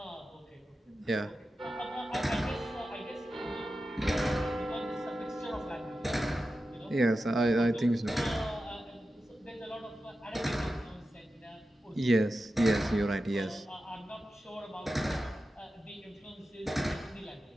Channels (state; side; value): normal; both; correlation 0.92